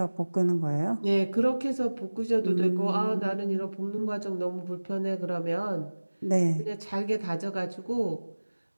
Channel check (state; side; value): inverted; both; correlation -1.00